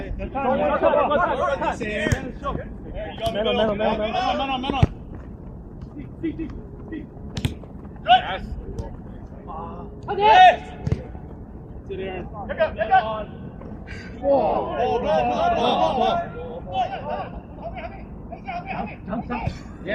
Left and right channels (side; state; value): both; identical; correlation 1.00